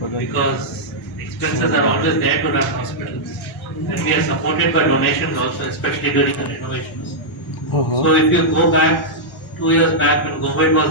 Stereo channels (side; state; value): both; normal; correlation -0.07